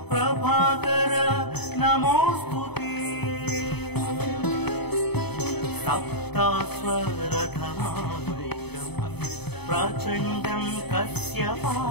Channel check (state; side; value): late; right; 0.98 ms